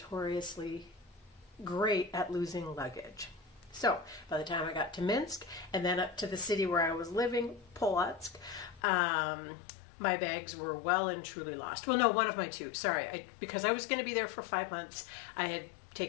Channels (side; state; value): right; drops out; at 8.8 s